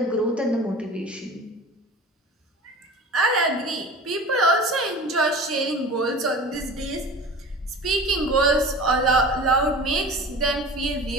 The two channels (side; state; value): both; normal; correlation 0.37